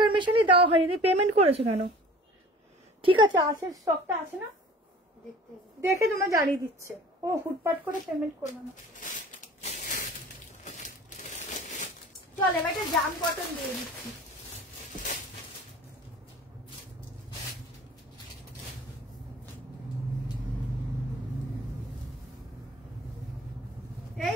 দেওয়া হয়নি, পেমেন্ট করেছো কেন? ঠিক আছে আছে, স্টকটা আছে না, দেখে তোমার জানিয়ে দিচ্ছে। ও হুটপাট করে পেমেন্ট করবে না। চল এবার একটা জাম কটন দিয়ে দিচ্ছি। এই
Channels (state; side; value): normal; both; correlation 0.45